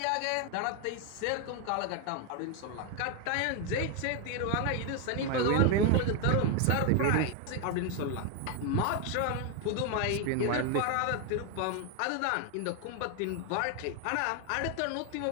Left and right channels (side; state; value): both; different; correlation 0.01